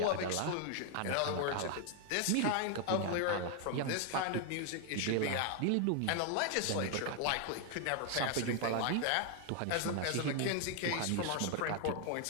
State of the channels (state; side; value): different; both; correlation 0.00